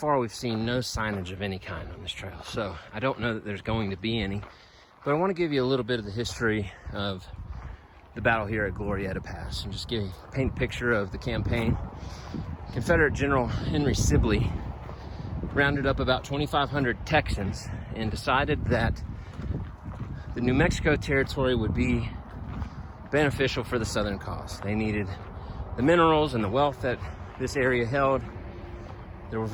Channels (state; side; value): identical; both; correlation 1.00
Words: we've seen no signage of any kind on this trail. So I don't know that there's going to be any, but I want to give you a little bit of the history of the battle here at Glorieta Pass and just paint a picture of the campaign. Confederate General Henry Sibley rounded up about 2,500 Texans and decided that the New Mexico territory would be beneficial for the Southern cause. They needed the minerals and the wealth that this area held. There were